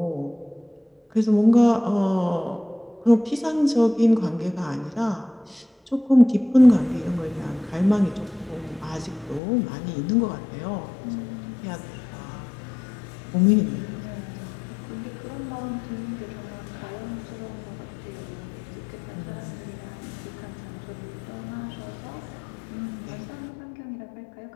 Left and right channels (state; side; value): drops out; right; at 9.4 s